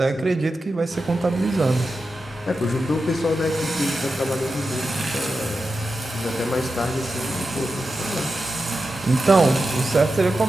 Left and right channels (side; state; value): both; normal; correlation 0.91